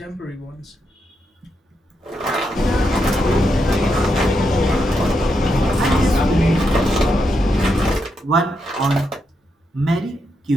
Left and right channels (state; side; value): normal; both; correlation 0.82